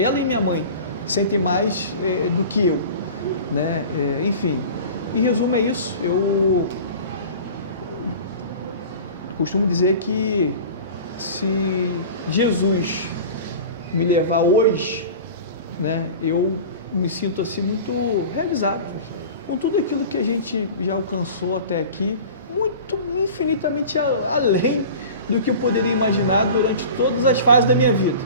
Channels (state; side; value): inverted; both; correlation -0.37